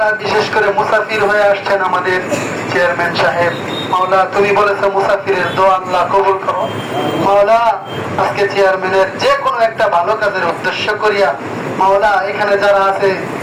বিশেষ করে মুসাফির হয়ে আসছেন আমাদের চেয়ারম্যান সাহেব, মাওলা তুমি বলেছো মুসাফিরের দোয়া আল্লাহ কবুল করো। মাওলা আজকে চেয়ারম্যানের যে কোনো একটা ভালো কাজের উদ্দেশ্য করিয়া মাওলা এখানে যারা আছে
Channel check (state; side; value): identical; both; correlation 1.00